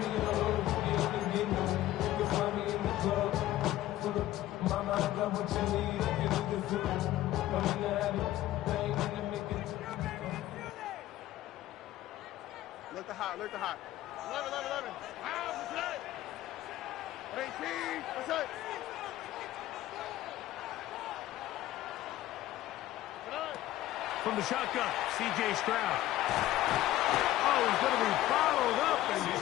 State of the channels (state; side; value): quieter; right; 14.8 dB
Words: Look the hot, look the hot. 11. What's up? 18, what's up? From the shotgun, C.J. Stroud. Oh, he's going to be followed up and